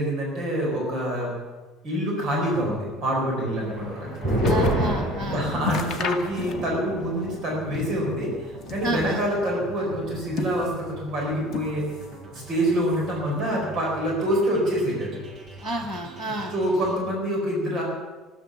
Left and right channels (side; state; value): both; normal; correlation 0.44